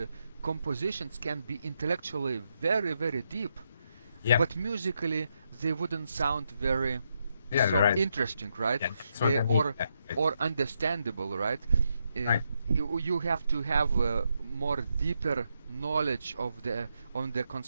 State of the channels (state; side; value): inverted; both; correlation -0.81